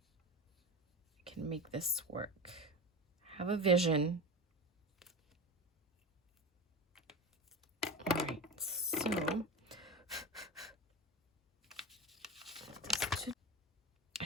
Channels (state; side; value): normal; both; correlation 0.24